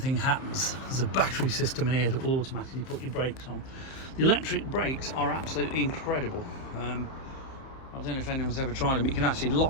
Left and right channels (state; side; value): late; right; 31 ms